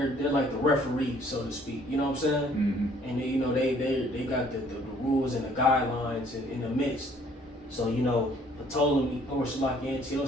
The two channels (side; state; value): both; normal; correlation 0.60